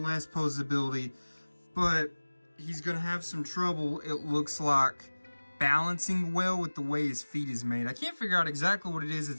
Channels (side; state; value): both; inverted; correlation -1.00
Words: less posability, but he's going to have some trouble, it looks like, balancing well with the way his feet is made. I can't figure out exactly what it is